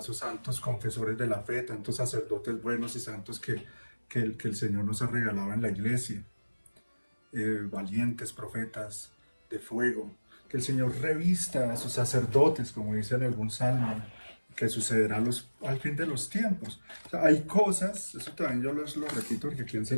santos confesores de la fe, tantos sacerdotes buenos y santos que el Señor nos ha regalado en la iglesia, valientes profetas de fuego, que el Señor revista a sus sacerdotes, como dice en algún salmo, que sucederá al fin de los tiempos. O sea, hay cosas, eso también yo lo repito porque aquí he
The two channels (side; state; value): both; inverted; correlation -1.00